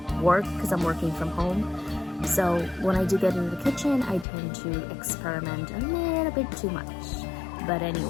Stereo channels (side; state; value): right; drops out; at 4.2 s